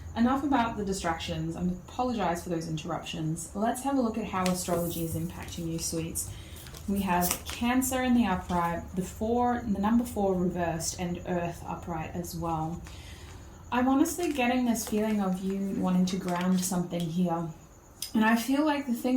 enough about the distractions. I apologize for those interruptions. Let's have a look at how astrology is impacting you, sweets. We have Cancer in the upright, the number 4 reversed, and Earth upright as well. I'm honestly getting this feeling of you wanting to ground something here. And I feel like the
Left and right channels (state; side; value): identical; both; correlation 1.00